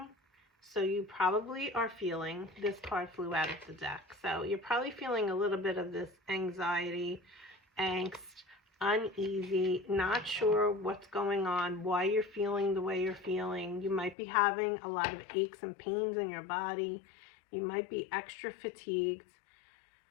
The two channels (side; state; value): right; drops out; at 14.2 s